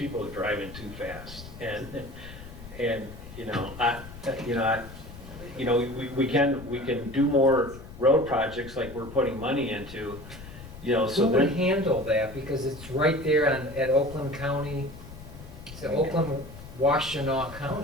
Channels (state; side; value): noise; left; rumble, 15 dB below the sound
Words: are driving too fast, and we can do more road projects like we're putting money into, so Who would then, handle that? Because it's right there at Oakland County, it's the Oakland Washtenaw